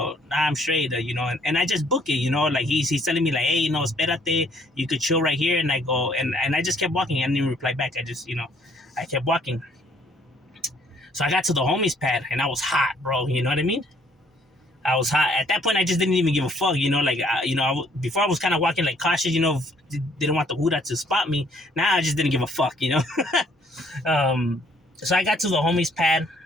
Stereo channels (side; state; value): both; normal; correlation 0.63